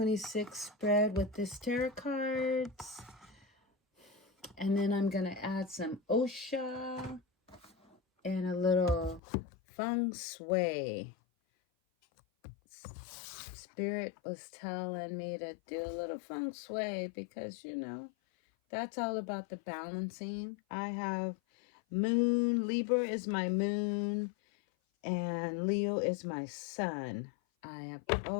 spread with this tarot cards, and then I'm gonna add some osha and a little feng shui. Spirit was telling me to do a little feng shui because that's all about the balancing. I have moon, Libra is my moon, and Leo is my sun.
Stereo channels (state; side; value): drops out; right; at 9.2 s